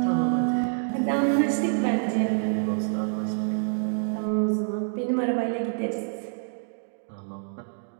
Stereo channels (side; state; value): left; silent; digital silence